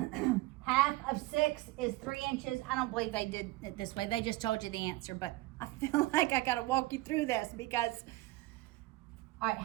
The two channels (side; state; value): left; quieter; 19.6 dB